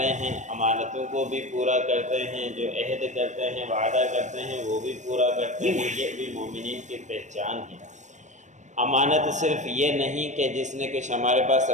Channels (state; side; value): late; left; 0.35 ms